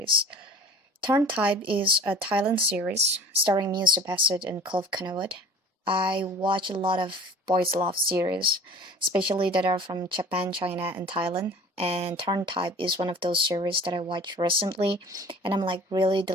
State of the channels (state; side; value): normal; both; correlation 0.44